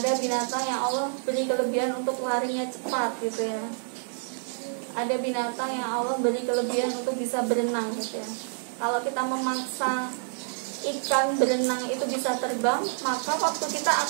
binatang yang Allah beri kelebihan untuk larinya cepat gitu ya. Ada binatang yang Allah beri kelebihan untuk bisa berenang gitu ya. Kalau kita memaksa ikan berenang itu bisa terbang, maka waktu kita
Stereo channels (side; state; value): left; silent; digital silence